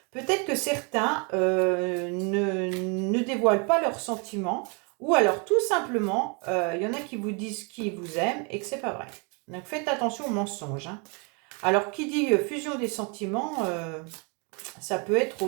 Peut-être que certains ne dévoilent pas leurs sentiments. Ou alors, tout simplement, il y en a qui vous disent qu'ils vous aiment et que c'est pas vrai. Donc, faites attention aux mensonges. Alors, qui dit fusion des sentiments, ça peut être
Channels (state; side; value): quieter; left; 33.7 dB